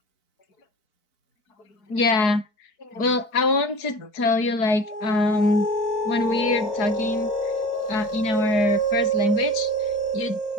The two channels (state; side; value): late; right; 4.5 ms